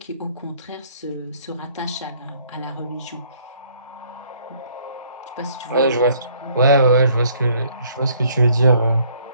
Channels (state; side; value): inverted; both; correlation -0.63